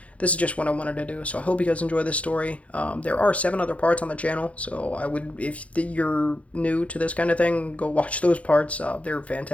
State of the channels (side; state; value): right; late; 0.064 ms